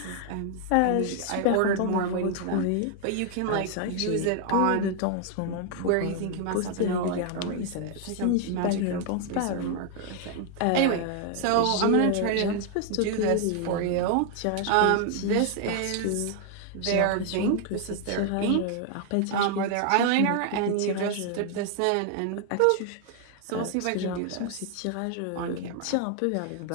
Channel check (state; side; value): different; both; correlation 0.00